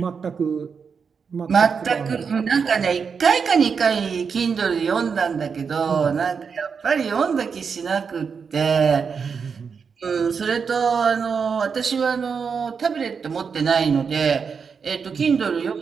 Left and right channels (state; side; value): quieter; left; 6.0 dB